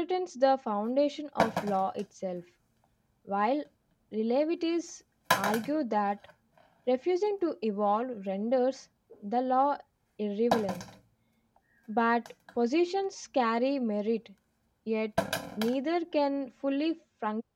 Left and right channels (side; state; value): both; identical; correlation 1.00